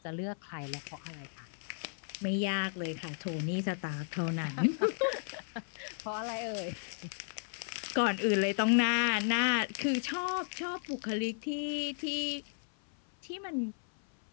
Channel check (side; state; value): right; silent; 55 dB below the other